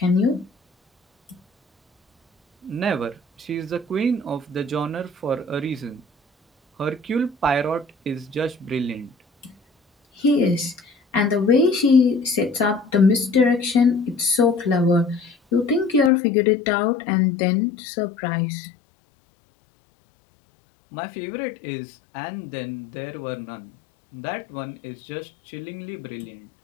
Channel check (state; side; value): drops out; right; at 16.1 s